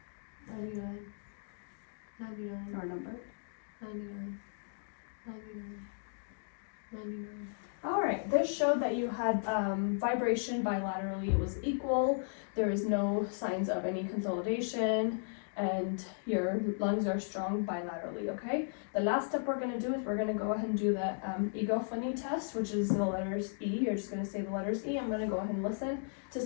99. 99. Or number. 99. 99. 99. Alright, this showed that you had vibration bilaterally, it was equal, there is no signs of any consolidation, and your lungs are strong bilaterally, okay? The last step we're going to do is we're going to go ahead and do the egophony test, which is the letters E. You're just going to say the letters E. I'm going to go ahead and listen to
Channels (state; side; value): silent; right; digital silence